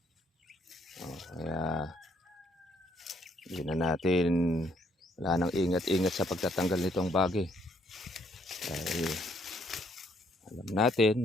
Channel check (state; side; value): normal; both; correlation 0.69